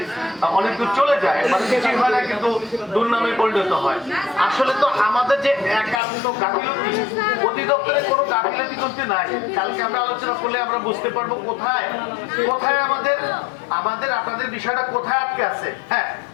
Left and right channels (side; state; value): right; drops out; at 6.0 s